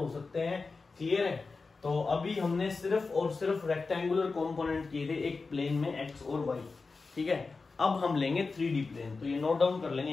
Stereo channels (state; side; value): quieter; right; 4.2 dB